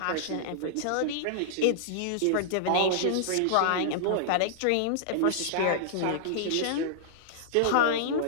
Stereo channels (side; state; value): both; different; correlation -0.01